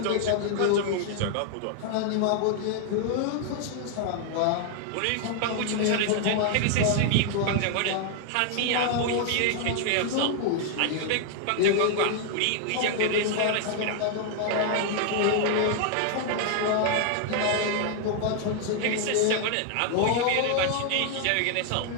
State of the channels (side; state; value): both; different; correlation 0.00